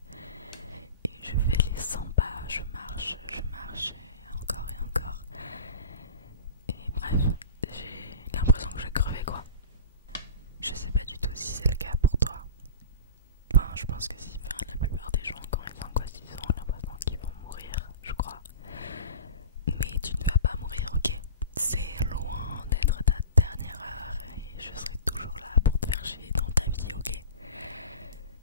et je fais les 100 pas, je marche et encore. Et bref, j'ai l'impression que je vais crever quoi. Je sais pas du tout si c'est le cas pour toi. Enfin, je pense que si, enfin, la plupart des gens quand ils angoissent, ils ont l'impression qu'ils vont mourir, je crois. Mais tu ne vas pas mourir, ok? C'est loin d'être ta dernière heure et je serai toujours là pour te faire chier dans ta vie, ok?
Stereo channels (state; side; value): inverted; both; correlation -0.34